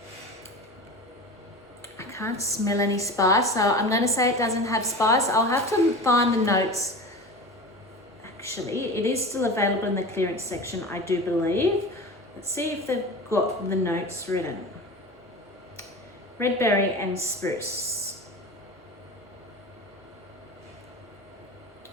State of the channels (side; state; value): both; normal; correlation 0.31